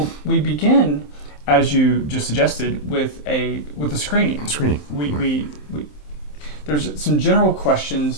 we begin, as you just suggested, with a screening. We there's some general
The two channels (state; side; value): late; right; 27 ms